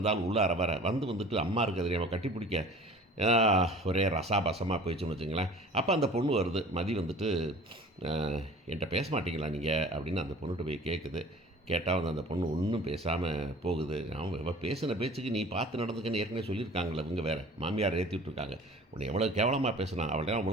உள்ளார வர வந்துட்டு அம்மா இருக்கிறது அவன் கட்டி பிடிக்க ஒரே ரசாபசமாக போயிடுச்சுன்னு வச்சுங்களேன். அப்போ அந்த பொண்ணு வருது, மதி வந்துட்டு என்கிட்ட பேச மாட்டீங்களா நீங்கள் அப்படின்னு அந்த பொண்ணுகிட்ட போய் கேட்குது. கேட்டால் வந்து அந்த பொண்ணு ஒன்றும் பேசாமல் போகுது. அவன் பேசின பேச்சுக்கு நீ பார்த்து நடந்துக்கன்னு ஏற்கனவே சொல்லியிருக்காங்களே, இவங்க வேறு மாமியார் ஏற்றி விட்டுருக்காங்க. உன்னை எவ்வளோ கேவலமாக பேசினான், அவள்கிட்ட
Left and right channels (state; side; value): normal; both; correlation 0.45